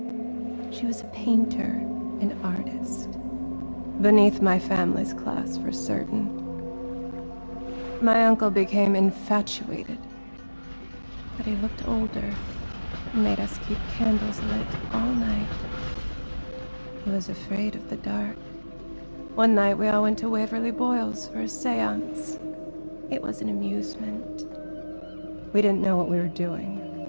She was a painter, an artist. Beneath my family's class, for certain. My uncle became infatuated. But he looked older and made us keep candles lit all night. He was afraid of the dark. One night we all went to Waverly Boyle's for a seance. It was an amusement. We didn't know what we were doing.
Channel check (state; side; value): inverted; both; correlation -1.00